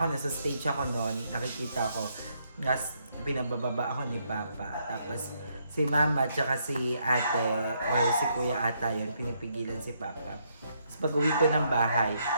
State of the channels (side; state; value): both; inverted; correlation -0.75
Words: na sa stage ako noon, nakikita ko nas pinabababa ako ni Papa tapos si Mama tsaka si Ate or si Kuya Ata yun pinipigilan si Papa. Tapos pag uwi ko ng bahay